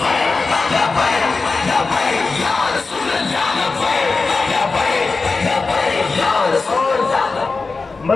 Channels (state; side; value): quieter; right; 4.0 dB